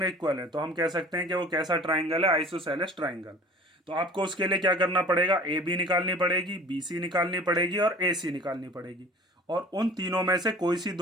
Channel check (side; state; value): both; normal; correlation 0.44